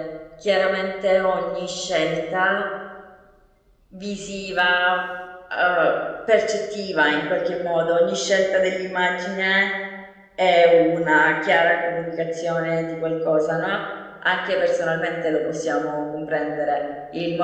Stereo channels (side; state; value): both; identical; correlation 1.00